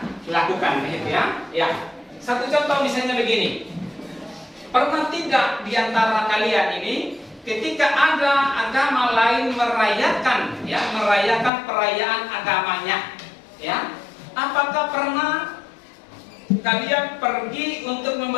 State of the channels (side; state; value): right; drops out; at 11.5 s